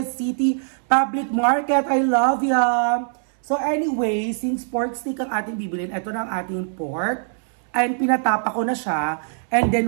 City Public Market. I love ya. So anyway, since pork steak ang ating bibilin, ito na ang ating pork. And pinatapa ko na siya. And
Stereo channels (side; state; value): left; silent; 64 dB below the other